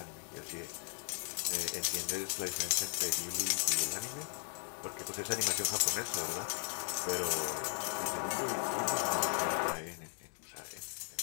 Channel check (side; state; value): right; silent; 53 dB below the other